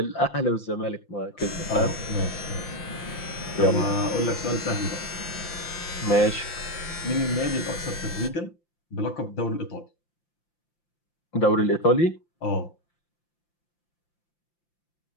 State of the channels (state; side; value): late; right; 5.8 ms